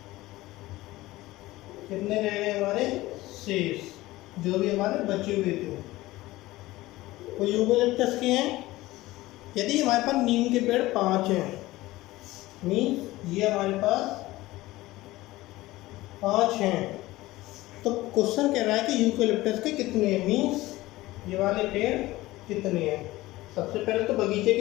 कितने रह गए हमारे? शेष, जो भी हमारे बचे हुए थे वो यूकेलिप्टस के हैं। यदि हमारे पास नीम के पेड़ 5 हैं मीन्स ये हमारे पास 5 हैं। तो क्वेश्चन कह रहा है कि यूकेलिप्टस के कितने हैं, मीन्स ये वाले पेड़ कितने हैं। सबसे पहले तो बगीचे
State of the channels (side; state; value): right; quieter; 18.2 dB